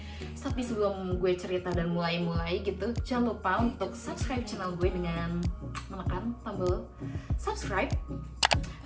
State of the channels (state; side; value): identical; both; correlation 1.00